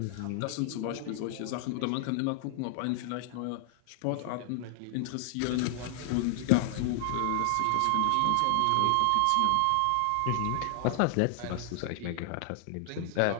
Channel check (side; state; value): both; different; correlation 0.00